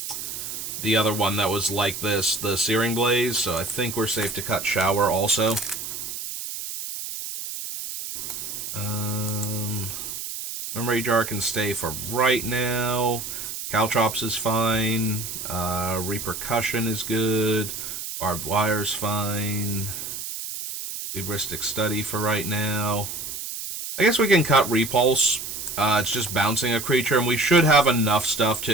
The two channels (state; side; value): noise; right; hiss, 7 dB below the sound